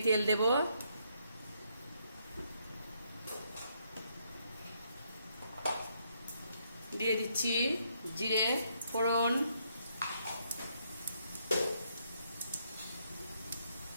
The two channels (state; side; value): inverted; both; correlation -0.74